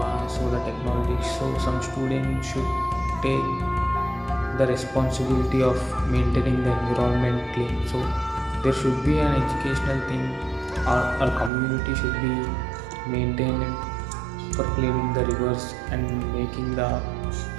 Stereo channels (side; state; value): left; drops out; at 11.5 s